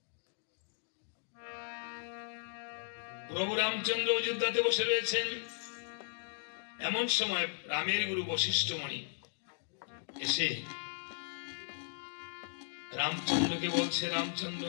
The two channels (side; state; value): right; silent; digital silence